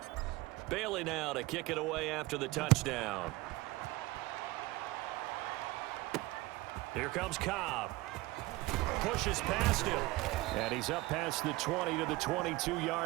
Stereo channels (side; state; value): left; quieter; 20.0 dB